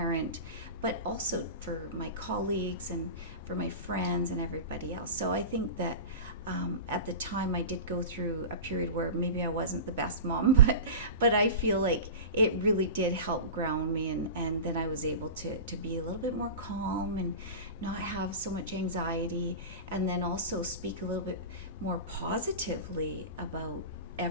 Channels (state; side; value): inverted; both; correlation -0.30